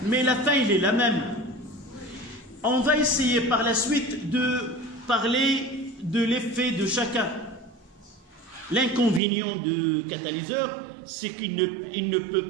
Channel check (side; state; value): left; drops out; at 9.2 s